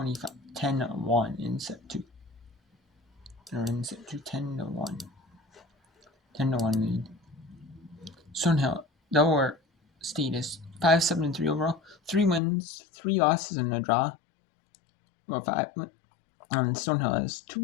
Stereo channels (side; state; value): right; drops out; at 12.4 s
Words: in set 2. They're in set 2 10-1. 10-1 lead. Stonehill, Delaware State is 5-7-3 overall. 3 wins, 3 losses, and a draw. Well, 5. Stonehill has 2